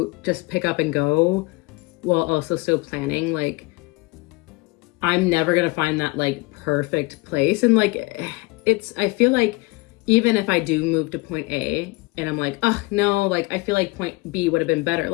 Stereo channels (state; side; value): quieter; right; 24.2 dB